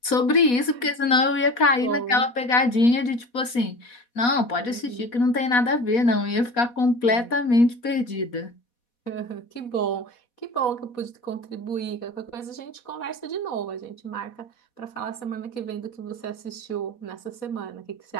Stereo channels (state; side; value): late; right; 4.1 ms